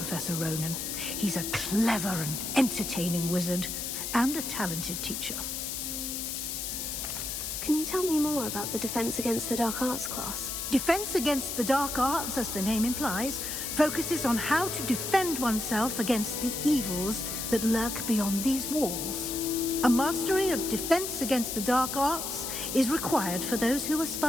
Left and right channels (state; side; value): noise; left; hiss, 4 dB below the sound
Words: Ronan. He's a clever and entertaining wizard, and a talented teacher. Can you tell me more about the Defense Against the Dark Arts class? Defense Against the Dark Arts, as the name implies, focuses on how to defend oneself against the evils that lurk beyond these walls. A mastery of Defense Against the Dark Arts is required for those who